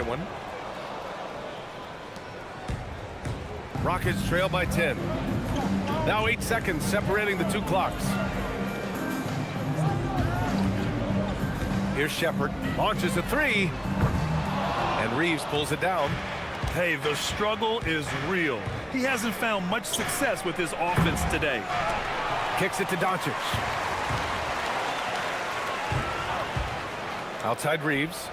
one. Rockets trail by 10. Now 8 seconds separating the 2 clocks. Here's Shepard. Launches a 3. And Reeves pulls it down. Hey, the struggle is real. He hasn't found much success with his offense today. Kicks it to Doncic. Outside Reeves.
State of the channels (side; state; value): both; identical; correlation 1.00